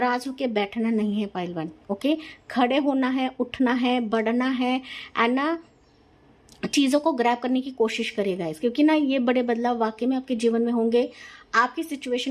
होकर बैठना नहीं है पायल 1। ओके, खड़े होना है, उठना है, बढ़ना है, एंड ना चीज़ों को ग्रैब करने की कोशिश करिएगा इस, क्योंकि ना ये बड़े बदलाव वाकई में आपके जीवन में होंगे। आपकी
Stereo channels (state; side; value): identical; both; correlation 1.00